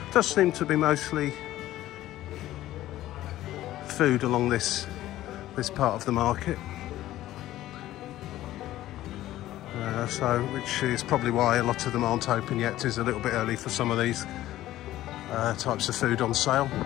does seem to be mostly food along this part of the market. Which is probably why a lot of them aren't open yet. It is a little bit early for some of these types of food on sale.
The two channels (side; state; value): right; quieter; 14.5 dB